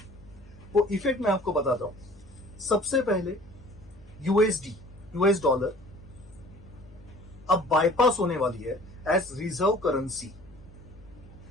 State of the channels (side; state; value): left; noise; hum, 23 dB below the sound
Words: वो इफेक्ट मैं आपको बताता हूं। सबसे पहले यूएसडी, यूएस डॉलर अब बाईपास होने वाली है एज रिजर्व करेंसी।